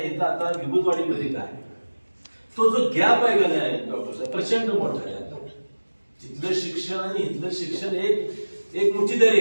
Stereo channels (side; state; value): both; inverted; correlation -1.00